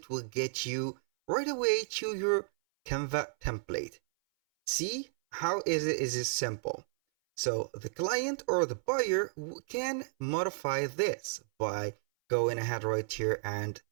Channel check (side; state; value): left; silent; 56 dB below the other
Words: will get you right away to your Canva template. See how is it simple. So the client or the buyer can modify this by going ahead right here and